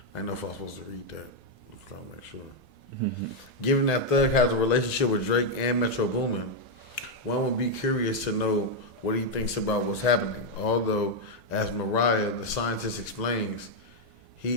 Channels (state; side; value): normal; both; correlation 0.00